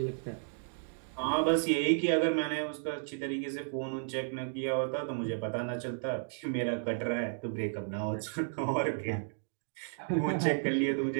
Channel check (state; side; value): silent; left; digital silence